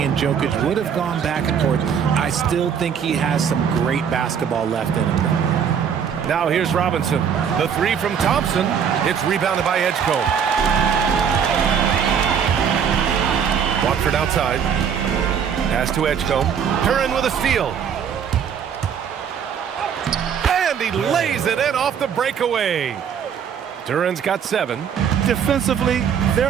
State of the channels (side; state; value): left; quieter; 7.6 dB